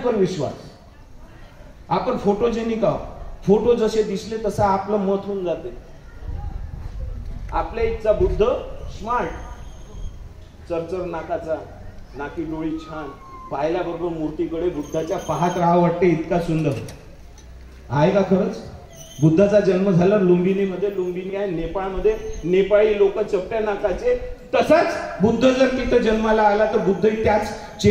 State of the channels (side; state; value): both; identical; correlation 1.00